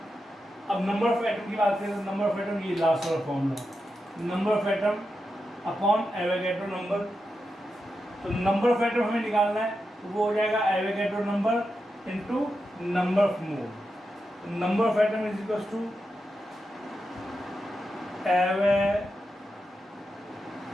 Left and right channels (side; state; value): both; normal; correlation 0.88